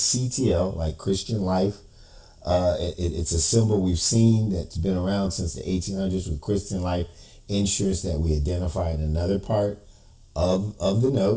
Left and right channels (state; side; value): identical; both; correlation 1.00